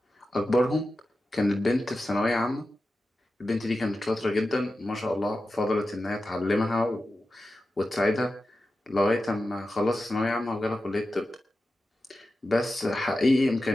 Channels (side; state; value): both; normal; correlation 0.92